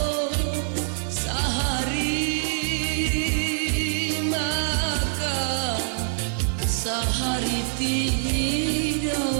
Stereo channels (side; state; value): left; silent; 62 dB below the other